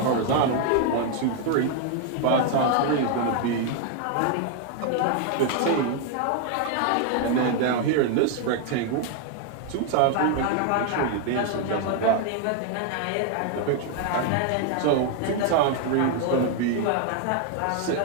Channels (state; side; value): different; both; correlation 0.00